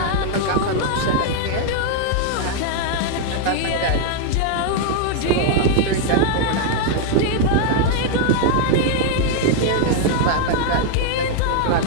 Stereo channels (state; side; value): different; both; correlation 0.00